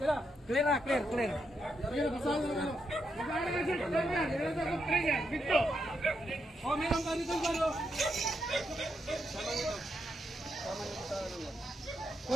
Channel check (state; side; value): normal; both; correlation 0.82